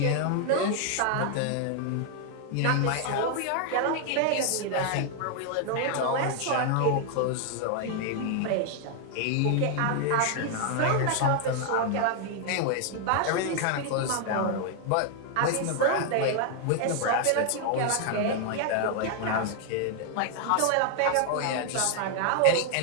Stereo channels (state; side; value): different; both; correlation 0.00